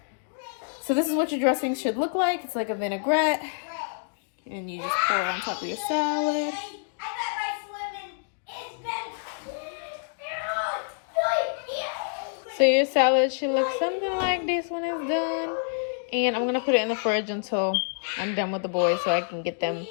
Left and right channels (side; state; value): right; silent; digital silence